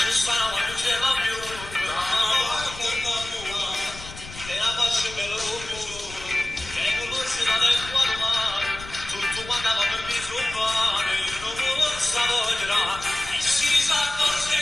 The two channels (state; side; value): noise; left; rumble, 15 dB below the sound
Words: stavo non ce va più, e la faccio per l'uomo, che non si va del quadro mare, tutto quando avevamo il viso male, io non lo stavo a girare, e si sa forse